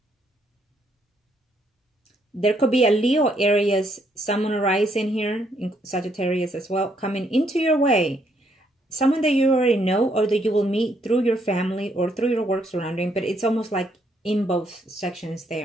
There could be a Leo, Aries, Sun, or Rising here, in Sagittarius as well, coming into your way. Someone that you already know or that you will meet through your family or through your work surrounding, but it's almost like in both sections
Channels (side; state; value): both; normal; correlation 0.72